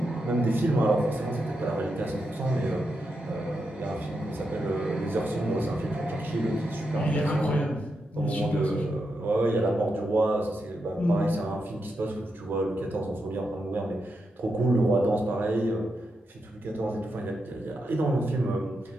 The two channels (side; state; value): both; normal; correlation 0.85